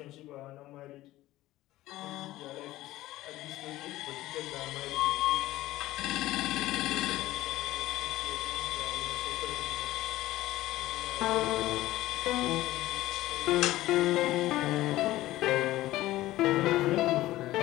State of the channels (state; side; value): quieter; right; 16.3 dB